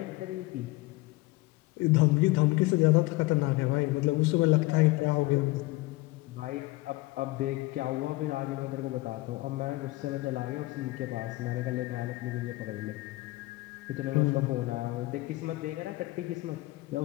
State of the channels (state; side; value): quieter; right; 20.9 dB